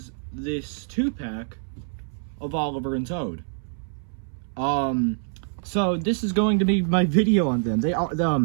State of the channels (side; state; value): left; silent; 60 dB below the other